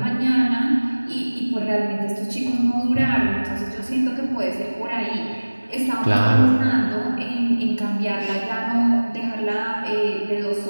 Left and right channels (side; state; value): both; inverted; correlation -1.00